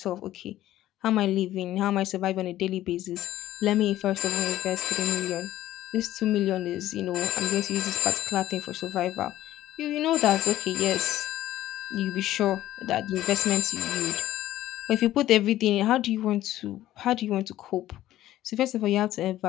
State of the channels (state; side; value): quieter; right; 14.0 dB